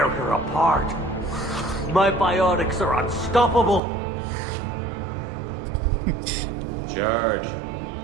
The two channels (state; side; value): drops out; left; at 3.8 s